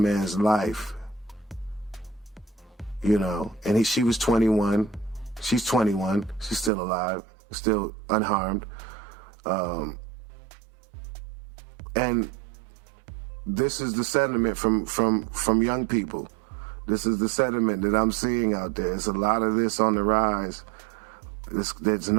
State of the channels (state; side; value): drops out; left; at 6.7 s